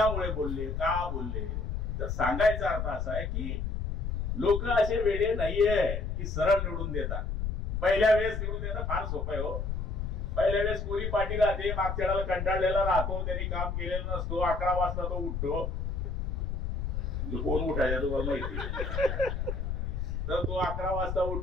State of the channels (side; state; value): left; noise; rumble, 2 dB below the sound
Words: बोलले, का बोलले. तर सांगायचा अर्थ असा आहे की लोक असे वेडे नाहीये की सरळ निवडून देतात. पहिल्या वेळेस निवडून देणं फार सोपं आहे हो. पहिल्या वेळेस कोरी पाटील राहते, मागच्या वेळेला कंटाळलेला राहतो, त्यांनी काम केलेलं नसतो, 11 वाजता तो उठतो. कोण उठायचा तुम्हाला माहिती? तर तो 11 वाजता